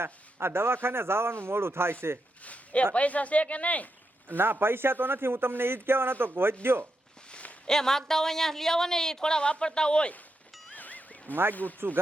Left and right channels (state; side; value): normal; both; correlation 0.85